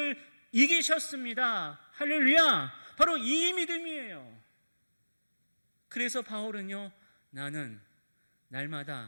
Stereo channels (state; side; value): inverted; both; correlation -1.00